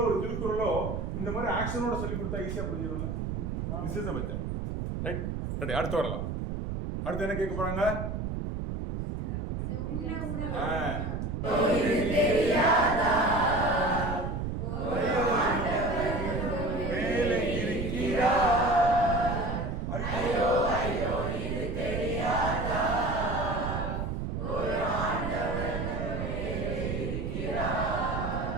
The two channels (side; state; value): right; noise; rumble, 3 dB below the sound